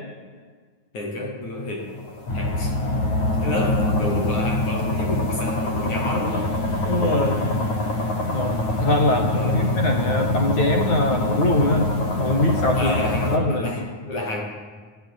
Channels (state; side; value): late; right; 9.4 ms